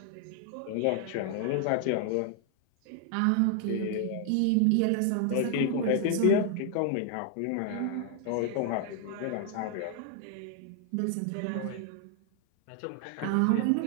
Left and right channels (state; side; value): different; both; correlation 0.00